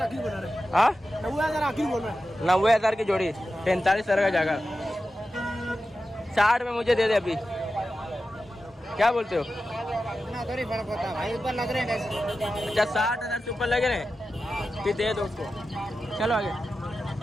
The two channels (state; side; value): normal; both; correlation 0.92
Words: आखिरी बना रहे। हाँ 90,000 आखिरी बोल रहा है। 90,000 की जोड़ी 45,000 का जाएगा। 60 में मुझे दे दे अभी। क्या बोलते हो? थोड़ी फर्क होता है भाई ऊपर लग रहे हैं। अच्छा 60,000 से ऊपर लगे रहे फिर दे दो उसको। चलो आगे।